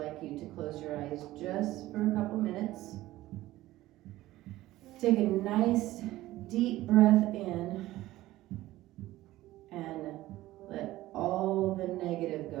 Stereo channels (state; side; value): quieter; left; 16.3 dB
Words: you to close your eyes just for a couple minutes. Take a nice deep breath in and let all the negative